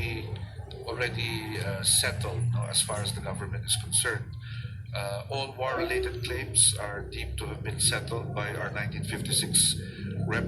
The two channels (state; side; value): identical; both; correlation 1.00